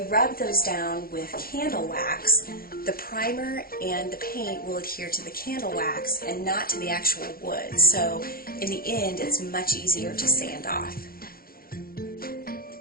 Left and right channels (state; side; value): late; right; 0.43 ms